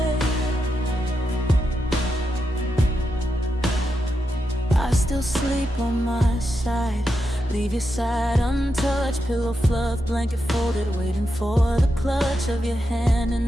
I still sleep on my side, leave your side untouched, pillow fluff, blanket folded, waiting for the clutch of your hand in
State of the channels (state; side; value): normal; both; correlation 0.86